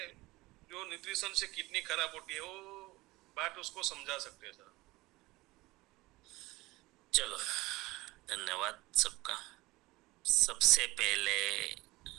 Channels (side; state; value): left; quieter; 20.6 dB